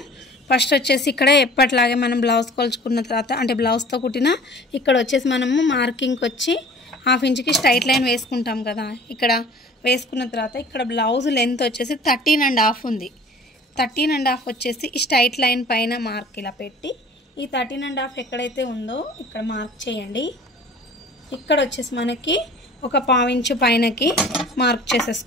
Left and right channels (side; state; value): both; normal; correlation 0.46